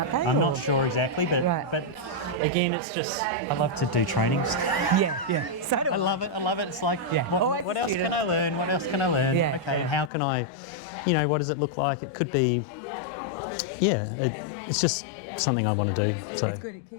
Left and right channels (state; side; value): drops out; right; at 10.1 s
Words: they? I'm not sure exactly, but again, it's just I love to do trainings. So do I love it. It's like, what else can I learn? What else can I learn? And how can I, what does it look like? It could be, it's just something I want to do. So. It's good. It